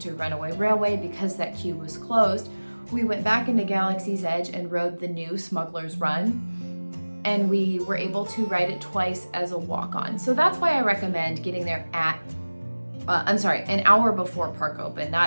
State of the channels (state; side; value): inverted; both; correlation -1.00